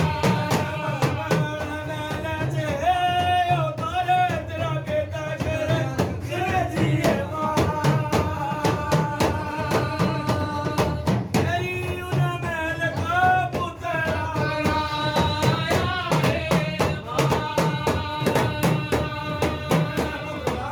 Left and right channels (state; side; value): identical; both; correlation 1.00